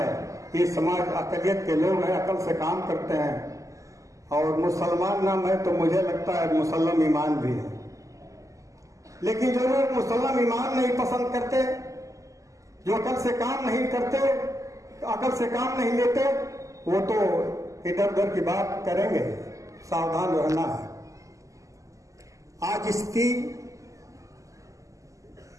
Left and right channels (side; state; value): left; late; 0.16 ms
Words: ये समाज अकलियत के लोग हैं, अकल से काम करते हैं, और मुसलमान नाम है तो मुझे लगता है मुसलम ईमान भी है। लेकिन जो लोग मुसलम ईमान नहीं पसंद करते, जो अकल से काम नहीं करते, अकल से काम नहीं लेते, वो तो इधर उधर की बात करेंगे। सावधान रहना है। आज इसकी